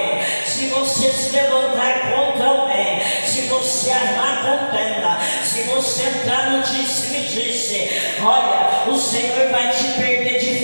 se você se levantar contra alguém, se você armar contenda, se você entrar no disse-me-disse, olha, o Senhor vai te perder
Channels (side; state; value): both; inverted; correlation -1.00